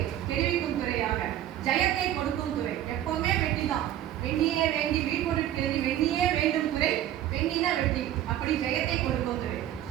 தெரிவிக்கும் துறையாக ஜெயத்தை கொடுக்கும் துறை. எப்பவுமே வெற்றி தான், வெண்ணியே வேண்டி வீழ்பொருட்கிறது வெண்ணியே வேண்டும் துறை, வெண்ணினா வெற்றி, அப்படி ஜெயத்தை கொடுக்கும் துறை.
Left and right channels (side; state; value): left; quieter; 12.2 dB